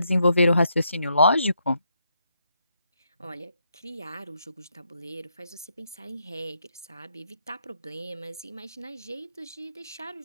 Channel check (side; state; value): both; inverted; correlation -0.77